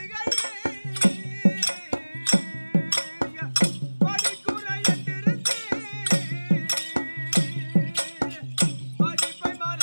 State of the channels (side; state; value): both; inverted; correlation -1.00